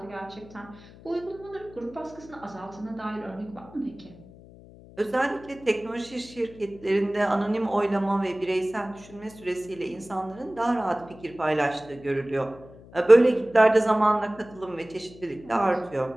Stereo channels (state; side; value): noise; left; hum, 21 dB below the sound